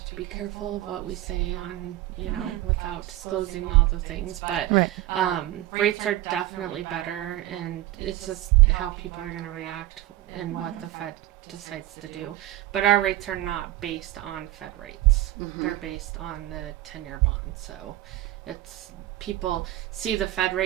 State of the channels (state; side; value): quieter; left; 15.3 dB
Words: to be careful of what we say on, without disclosing all the things. But rates are definitely better, and it's just how people are going to react and what the Fed decides to do. But our rates are not based on Fed rates. They're based on the 10-year bond. So it's, people see the Fed